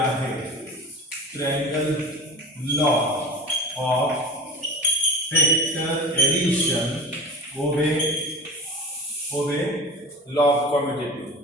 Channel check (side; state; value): both; normal; correlation 0.34